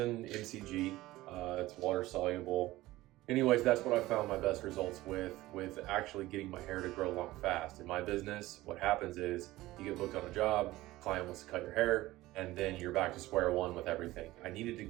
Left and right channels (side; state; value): left; quieter; 17.6 dB